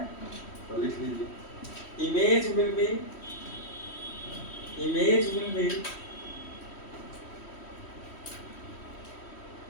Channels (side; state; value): right; late; 3.1 ms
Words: तो लिख लीजिए image will be